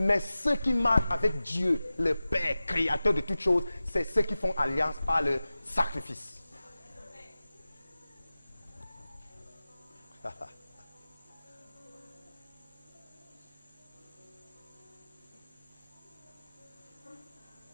ceux qui marchent avec Dieu, le Père, créateur de toutes choses, c'est ceux qui font alliance par le sacrifice.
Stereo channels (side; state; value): both; inverted; correlation -0.95